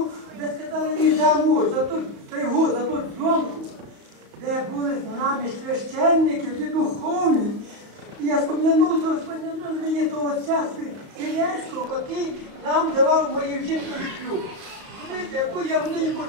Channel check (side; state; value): left; late; 35 ms